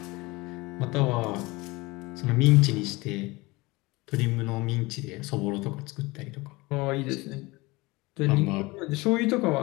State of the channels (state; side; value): quieter; right; 22.9 dB